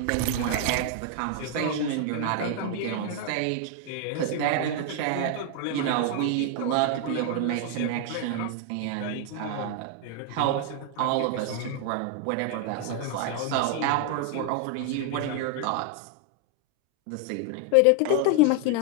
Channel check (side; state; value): both; different; correlation 0.00